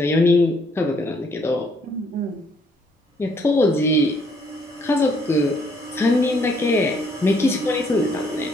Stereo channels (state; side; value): normal; both; correlation 0.67